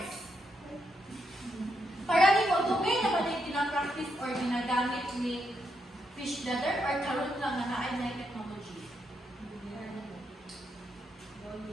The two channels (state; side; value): normal; both; correlation 0.80